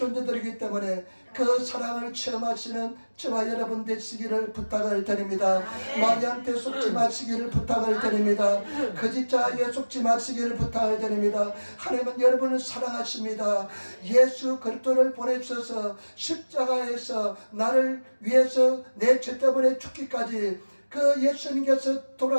때문에 그 사랑을 체험하시는 저와 여러분 되시기를 부탁을 드립니다. 마귀한테 속지 마시기를 부탁을 드립니다. 거짓자에게 속지 마시기를 부탁을 드립니다. 하나님은 여러분을 사랑하십니다. 예수 그리스도를 보내주셔서 십자가에서 나를 위해서 내 죄 때문에 죽기까지, 그 예수님께서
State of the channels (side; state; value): both; inverted; correlation -1.00